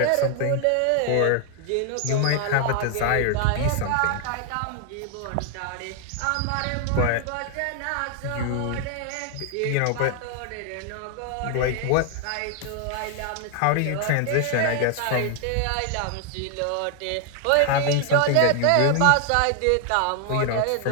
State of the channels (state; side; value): different; both; correlation 0.00